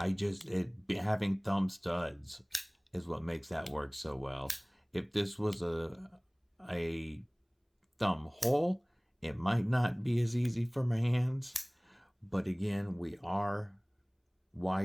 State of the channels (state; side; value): identical; both; correlation 1.00